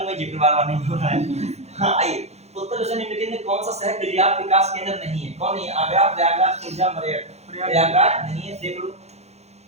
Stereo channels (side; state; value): left; late; 0.31 ms